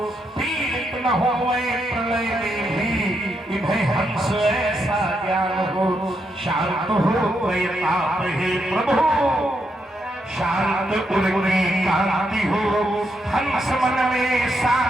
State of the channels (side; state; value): both; normal; correlation 0.80